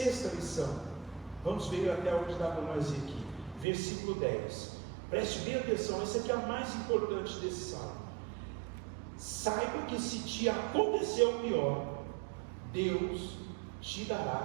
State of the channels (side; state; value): left; drops out; at 3.7 s